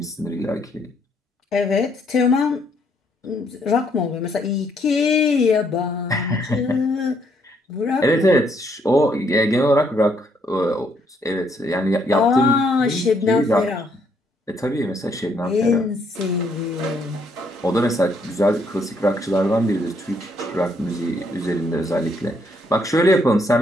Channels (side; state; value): both; normal; correlation 0.71